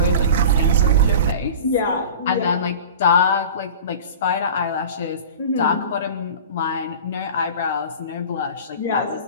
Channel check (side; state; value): both; inverted; correlation -0.36